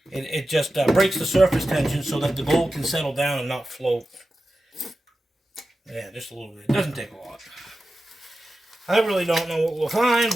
just breaks the surface tension so that the gold can settle down and not float. Yeah, just a little bit. It doesn't take a lot. I really don't know what we'll find,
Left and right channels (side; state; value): both; normal; correlation 0.93